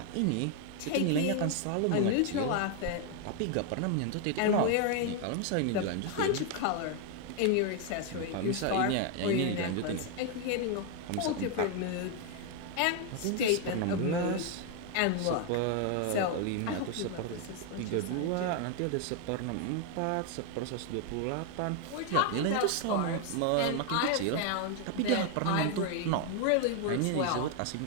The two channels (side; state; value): both; different; correlation 0.01